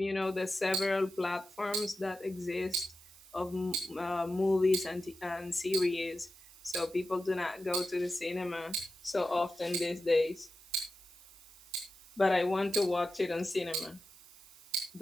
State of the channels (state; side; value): normal; both; correlation 0.91